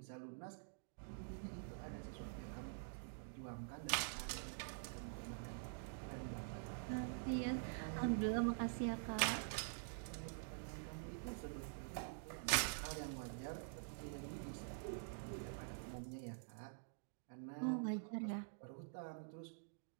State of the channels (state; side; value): silent; left; digital silence